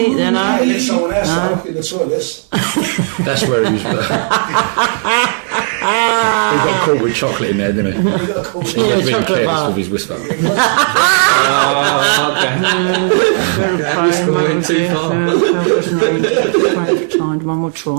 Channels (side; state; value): left; silent; 57 dB below the other